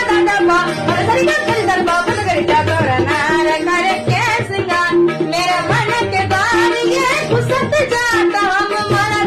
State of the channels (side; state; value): both; identical; correlation 1.00